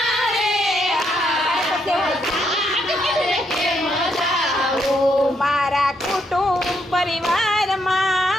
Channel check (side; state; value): both; normal; correlation 0.76